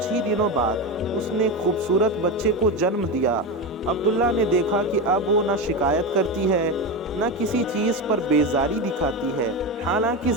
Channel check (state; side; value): normal; both; correlation 0.17